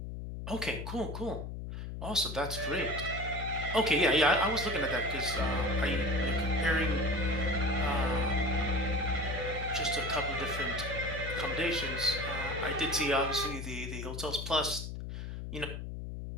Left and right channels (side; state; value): left; noise; hum, 7 dB below the sound